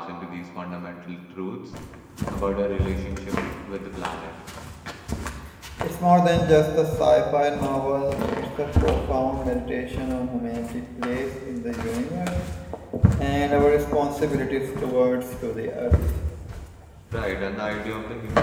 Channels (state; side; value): identical; both; correlation 1.00